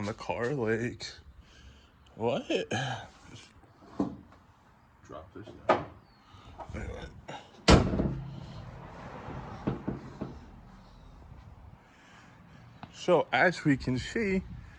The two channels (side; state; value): both; identical; correlation 1.00